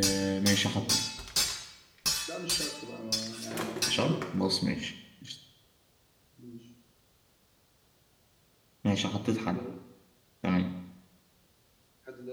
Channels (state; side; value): identical; both; correlation 1.00